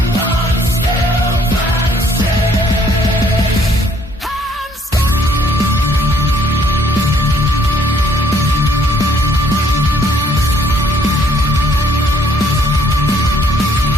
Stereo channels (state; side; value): normal; both; correlation 0.64